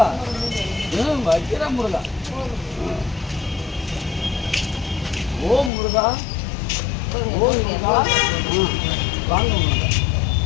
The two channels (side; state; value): right; drops out; at 5.7 s